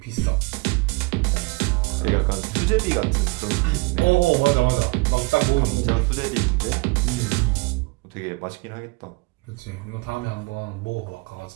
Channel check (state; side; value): quieter; left; 25.7 dB